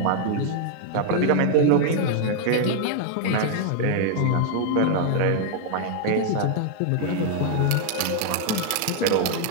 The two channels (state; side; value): different; both; correlation 0.00